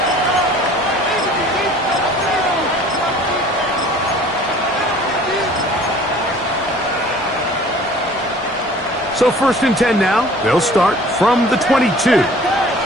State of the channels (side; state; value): both; normal; correlation 0.49